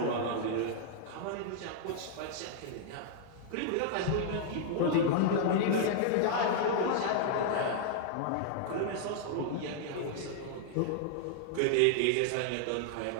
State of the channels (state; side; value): different; both; correlation -0.01